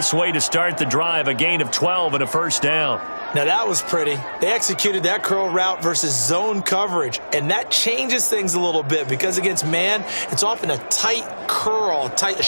way to start the drive, a gain of 12 and a first down. Now that was pretty. They executed that curl route versus zone coverage, and that changes things a little bit because against man, it's often a tight curl, tight,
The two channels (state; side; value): inverted; both; correlation -1.00